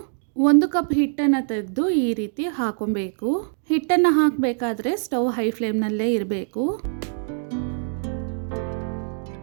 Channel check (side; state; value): left; silent; digital silence